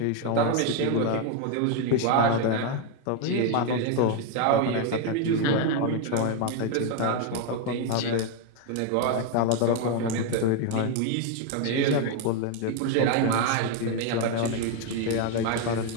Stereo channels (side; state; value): both; different; correlation 0.01